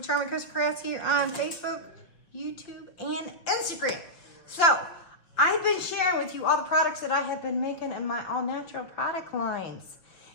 Charming Costa Crafts here on Facebook, YouTube, and Instagram. So, I've been sharing with you all the products that I have been making in my all-natural product lines.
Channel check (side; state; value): right; late; 5.5 ms